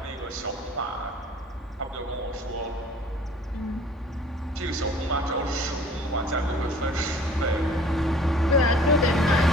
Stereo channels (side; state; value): both; normal; correlation 0.51